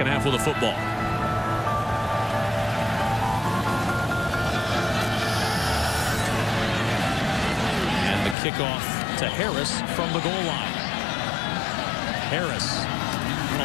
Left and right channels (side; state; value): right; drops out; at 8.3 s